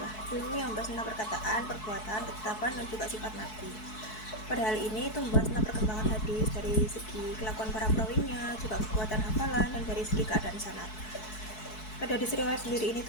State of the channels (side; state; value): right; late; 4.6 ms